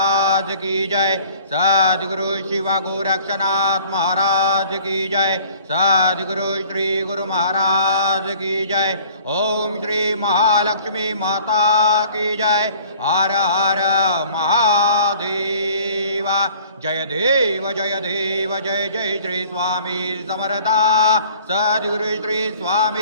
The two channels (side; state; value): both; inverted; correlation -0.52